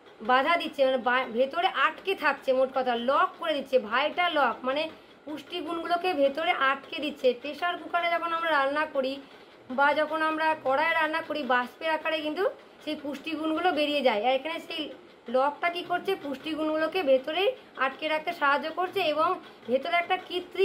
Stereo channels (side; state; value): both; identical; correlation 1.00